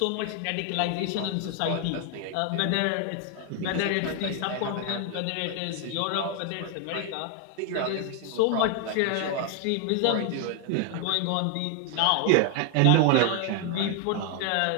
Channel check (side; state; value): both; different; correlation 0.01